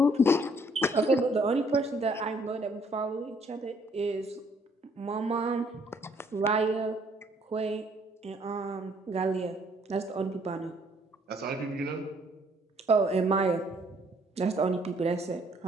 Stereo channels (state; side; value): normal; both; correlation 0.64